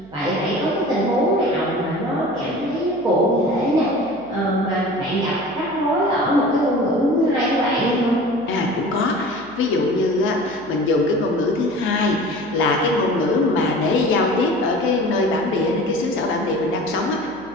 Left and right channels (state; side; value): noise; right; hum, 25 dB below the sound